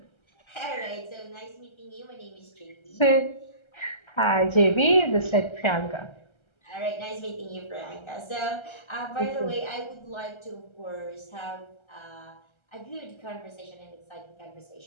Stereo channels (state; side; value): late; right; 1.3 ms